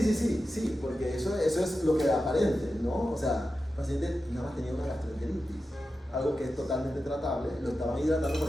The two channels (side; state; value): both; normal; correlation 0.91